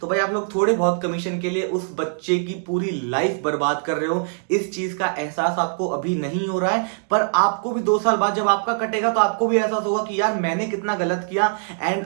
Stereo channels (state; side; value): silent; left; digital silence